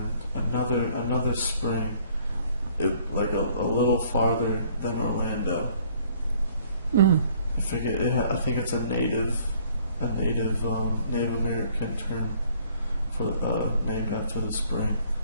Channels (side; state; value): both; inverted; correlation -0.60